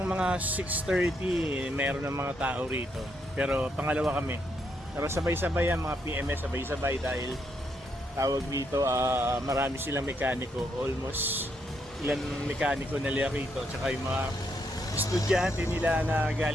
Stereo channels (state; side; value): normal; both; correlation 0.77